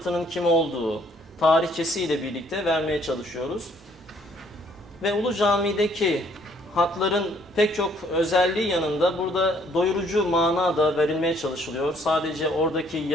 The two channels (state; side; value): normal; both; correlation 0.63